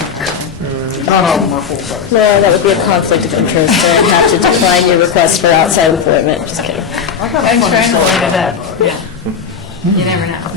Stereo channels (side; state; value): right; quieter; 6.6 dB